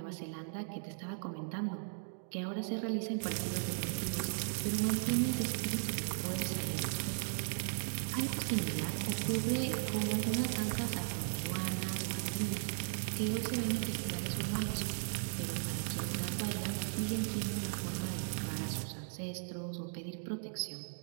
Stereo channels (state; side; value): silent; left; digital silence